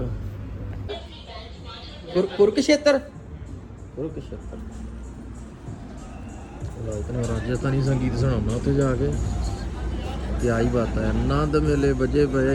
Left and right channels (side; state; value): both; identical; correlation 1.00